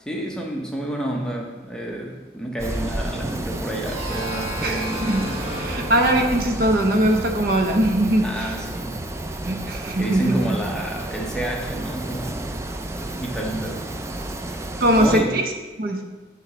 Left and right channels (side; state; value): both; normal; correlation 0.53